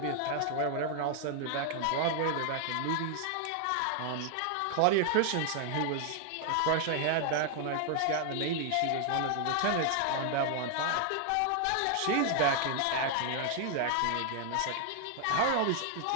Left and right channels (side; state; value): both; different; correlation 0.00